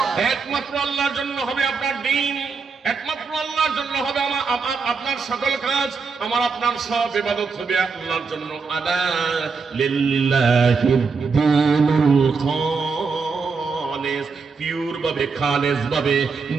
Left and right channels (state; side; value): quieter; left; 4.9 dB